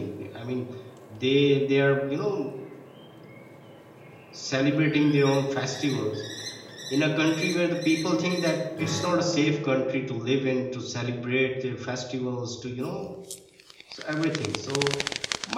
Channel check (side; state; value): both; identical; correlation 1.00